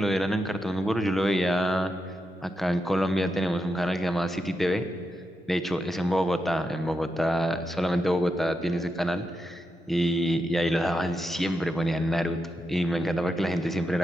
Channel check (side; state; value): both; normal; correlation 0.86